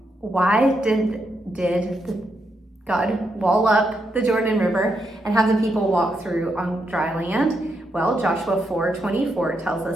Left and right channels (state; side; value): normal; both; correlation 0.81